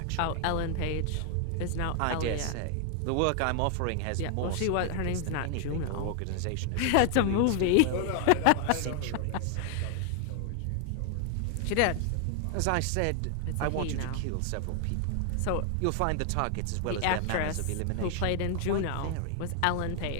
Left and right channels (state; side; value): different; both; correlation 0.00